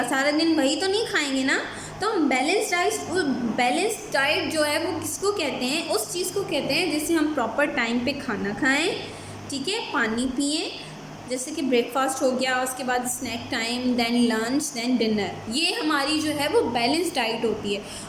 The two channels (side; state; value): both; identical; correlation 1.00